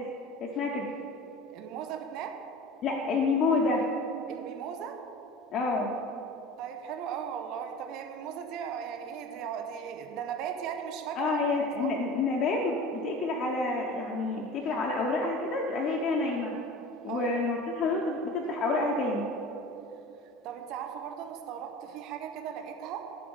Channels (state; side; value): normal; both; correlation 0.37